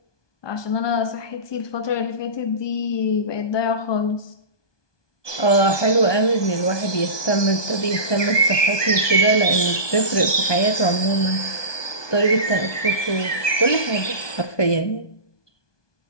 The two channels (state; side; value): late; right; 1.2 ms